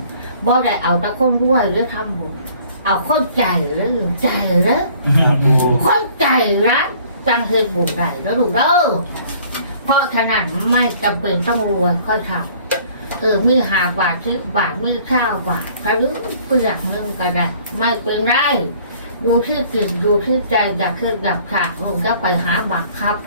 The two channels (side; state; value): both; inverted; correlation -0.55